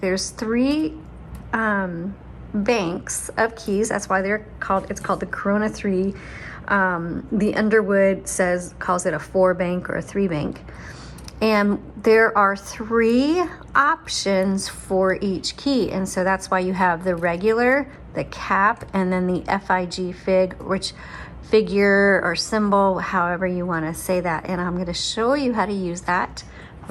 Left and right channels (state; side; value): identical; both; correlation 1.00